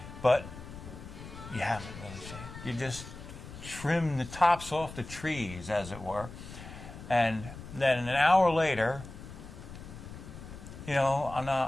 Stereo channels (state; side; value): noise; left; rumble, 13 dB below the sound